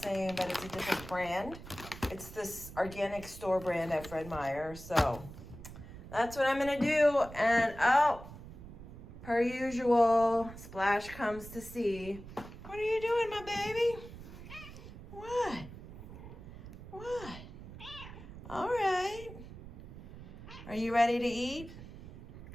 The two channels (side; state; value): right; noise; rumble, 14 dB below the sound